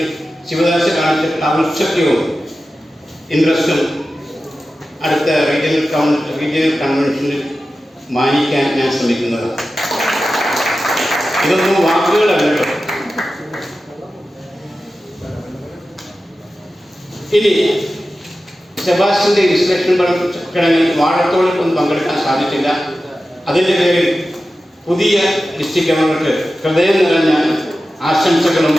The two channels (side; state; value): both; normal; correlation 0.93